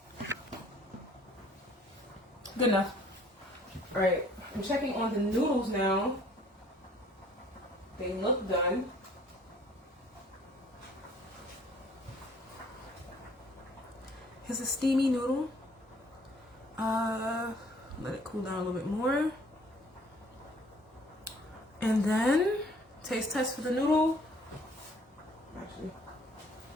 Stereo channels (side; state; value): both; normal; correlation 0.57